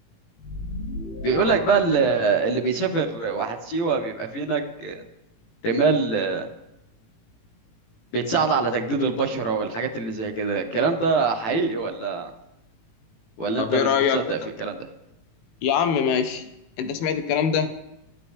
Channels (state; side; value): late; right; 18 ms